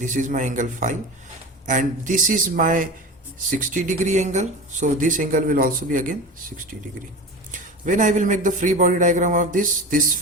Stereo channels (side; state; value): both; normal; correlation 0.30